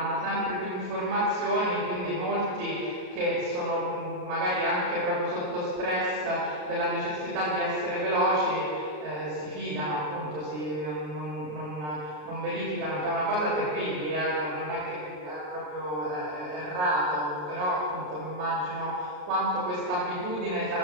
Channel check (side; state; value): left; late; 33 ms